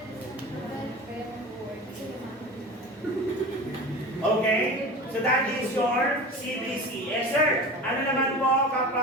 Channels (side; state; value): both; normal; correlation 0.33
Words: Okay? So that is your CBC. Yes, sir. Ano naman po